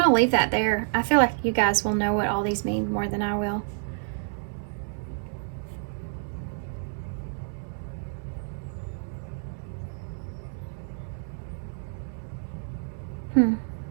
to leave that there. I feel like you guys will know what all these mean more than I will. There's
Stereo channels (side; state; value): left; silent; 59 dB below the other